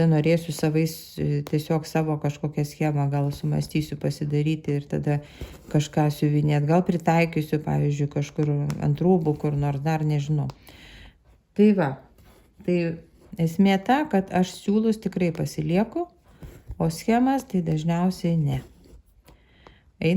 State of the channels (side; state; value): both; identical; correlation 1.00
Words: norėsiu tiesiog savo kažkokią schemą, gal sumastysiu pasidaryti ir tada kažką siuvinėti, gal pritaikysiu, pavyzdžiui, kažkur ant rūbų, kur nors dar nežinau. Tai va, tai esmė ta, kad aš siūlus tikrai pasilieku, o schemas tai dažniausiai ne.